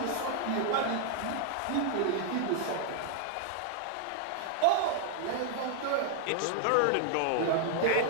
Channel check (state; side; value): different; both; correlation 0.00